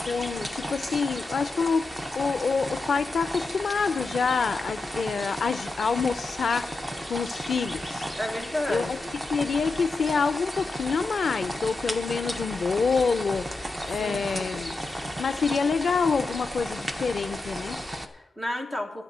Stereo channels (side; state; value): right; quieter; 3.7 dB